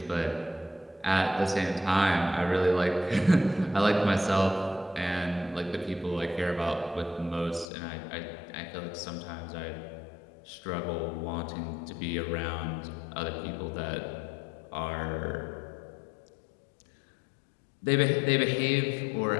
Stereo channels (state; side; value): drops out; right; at 7.7 s